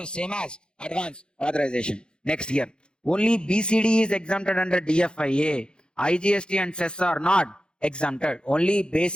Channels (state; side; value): late; right; 0.050 ms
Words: same as advance authorization. Next year, only BCD is exempted under DFIA. IGST and cess are not exempted. Only